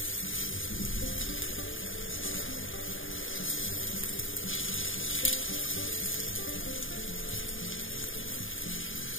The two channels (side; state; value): right; late; 0.58 ms